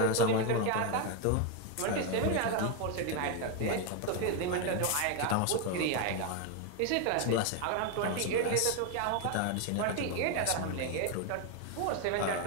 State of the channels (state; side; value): different; both; correlation 0.01